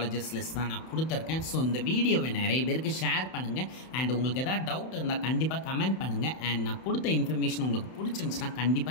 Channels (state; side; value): late; right; 31 ms